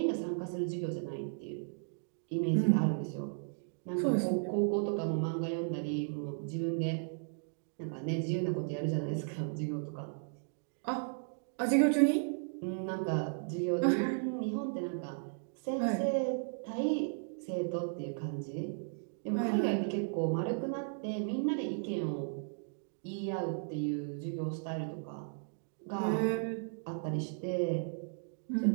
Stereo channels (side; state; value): left; silent; digital silence